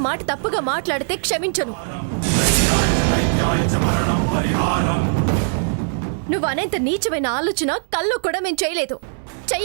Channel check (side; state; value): left; silent; digital silence